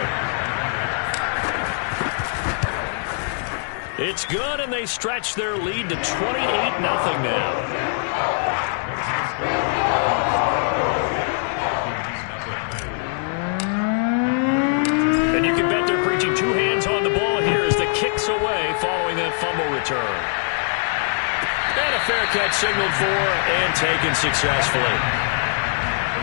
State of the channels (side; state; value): right; silent; digital silence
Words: It's good, and they stretch their lead to 28-0 now. And you can bet they're preaching 2 hands on the ball here as the kick's away following that fumble return. And a fair catch signaled for and taken successfully.